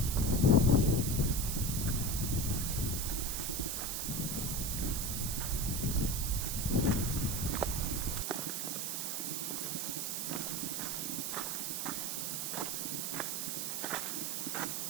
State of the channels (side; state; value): right; noise; hiss, 1 dB below the sound